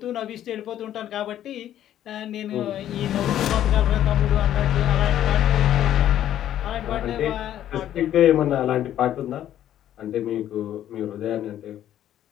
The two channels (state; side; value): quieter; right; 11.6 dB